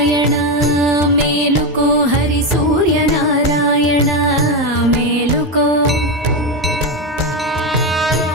మేలుకో హరి సూర్యనారాయణ మేలుకో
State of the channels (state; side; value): normal; both; correlation 0.11